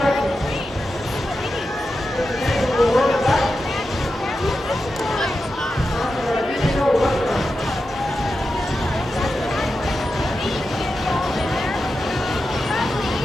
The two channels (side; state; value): both; normal; correlation 0.90